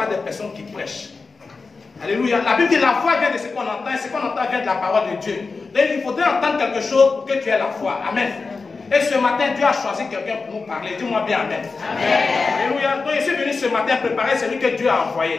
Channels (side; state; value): right; quieter; 4.3 dB